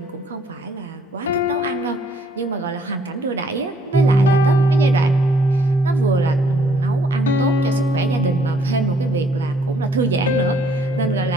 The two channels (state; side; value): normal; both; correlation 0.64